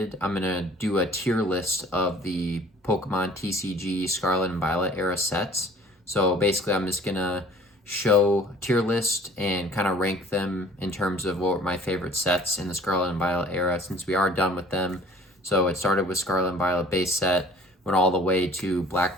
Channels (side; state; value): both; normal; correlation 0.52